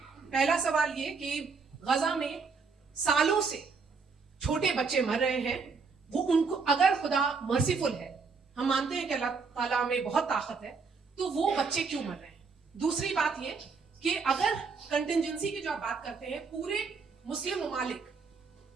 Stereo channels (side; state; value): left; quieter; 4.9 dB